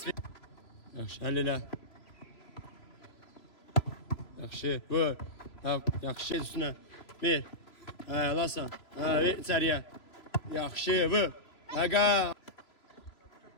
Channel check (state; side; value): late; right; 3.0 ms